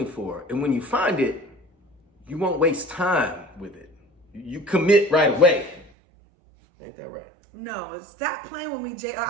for. And when you find it, you won't waste time with it. You commit right away. Ain't that right? No, stop playing with me, JR.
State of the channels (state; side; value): drops out; left; at 5.9 s